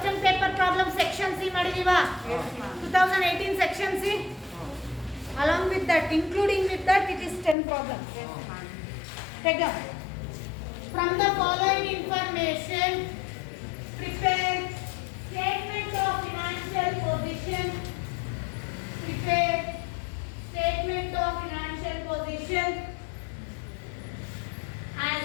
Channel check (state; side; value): drops out; right; at 7.6 s